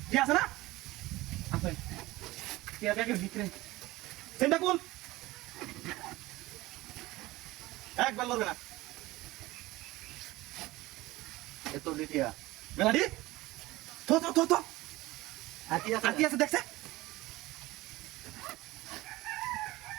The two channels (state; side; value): quieter; left; 19.1 dB